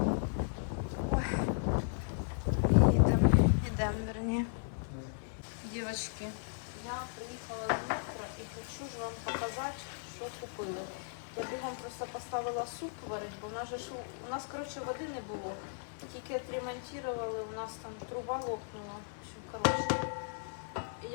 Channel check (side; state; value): right; silent; 54 dB below the other